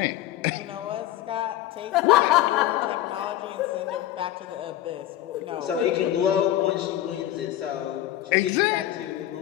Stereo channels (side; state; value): right; quieter; 13.6 dB